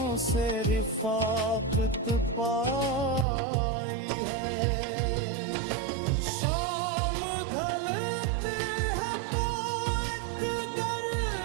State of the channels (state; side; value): drops out; left; at 3.2 s